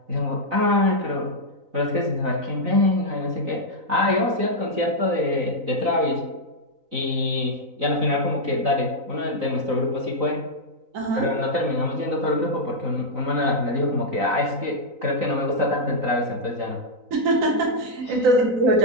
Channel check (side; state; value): left; late; 3.9 ms